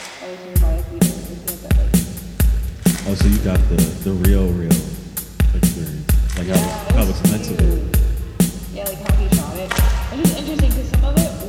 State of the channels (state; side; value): identical; both; correlation 1.00